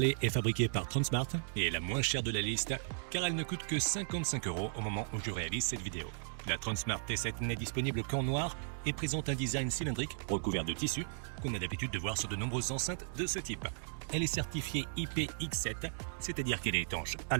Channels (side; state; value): left; silent; digital silence